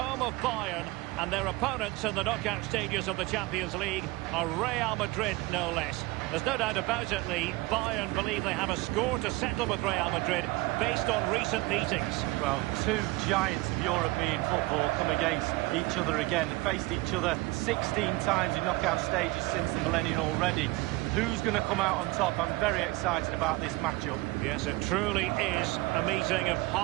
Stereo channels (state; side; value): quieter; left; 21.6 dB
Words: of Bayern, and their opponents in the knockout stages of the Champions League are Real Madrid, no less. There's no doubt about it, Lee. Bayern believe they have a score to settle with Real Madrid based on recent meetings. Well, 2 giants of European football come against each other again. They've faced each other 16 times in knockout stages since the millennium already. Who's going to come out on top? I'm very excited about this matchup. Yes, it truly is a meeting of